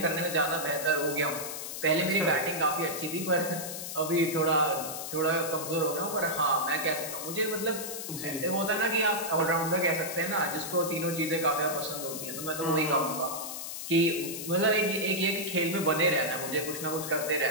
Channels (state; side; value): noise; left; hiss, 7 dB below the sound